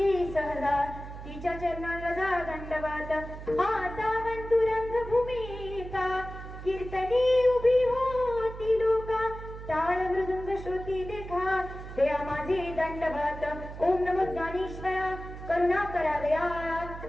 सहजा तिच्या चरणाला जा दंडवत आता वंतुरंग भूमिका कीर्तनी उभी होती लोका टाळ मृदुंग श्रुती देखा दया माझे दंडवत ओम नमो ज्ञानेश्वरा करुणा करा दयाळा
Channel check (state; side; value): noise; right; hum, 11 dB below the sound